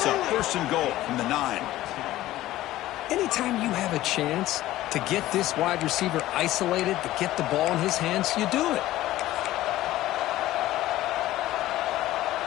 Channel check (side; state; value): right; quieter; 15.4 dB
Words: up. 1st and goal from the 9. Anytime you have a chance to get this wide receiver isolated, to get the ball in his hands, you do it.